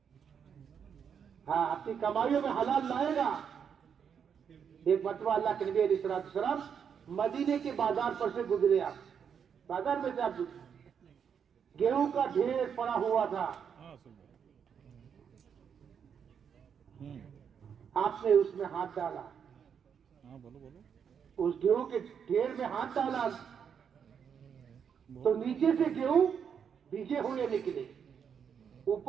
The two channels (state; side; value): quieter; left; 7.4 dB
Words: ہاں اپنی کمائیوں میں حلال لائے گا. ایک مرتبہ اللہ کے نبی علیہ السلام مدینے کے بازار پر سے گزرے. آپ بازار میں سے آپ گیہوں کا ڈھیر پڑا ہوا تھا. آپ نے اس میں ہاتھ ڈالا, اس گیہوں کے ڈھیر میں ہاتھ ڈالا تو نیچے سے گیہوں بھیگے ہوئے نکلے,